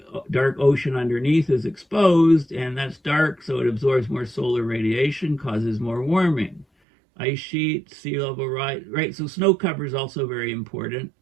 dark ocean underneath is exposed, and that's dark, so it absorbs more solar radiation, causes more warming. Ice sheet, sea level rise, right? So snow cover is also very important.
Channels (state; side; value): drops out; left; at 6.7 s